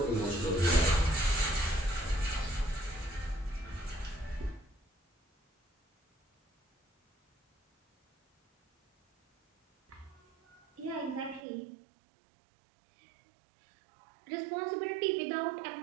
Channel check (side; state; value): left; drops out; at 11.4 s